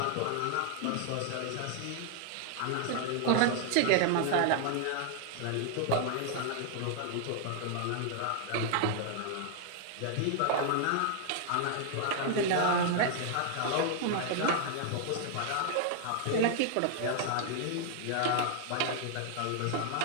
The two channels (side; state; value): both; different; correlation 0.00